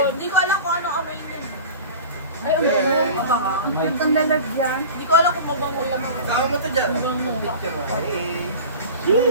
Hindi ko alam kung anong amoy niya. Ay, ang Hey! mabango. Ang lalagyan. Hindi ko alam kung mabango yan. Saan mo ito dyan? Picture mo. Hey!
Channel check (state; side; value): inverted; both; correlation -0.36